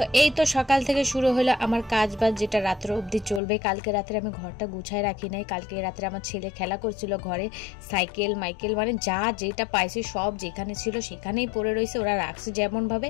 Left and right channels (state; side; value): drops out; right; at 3.4 s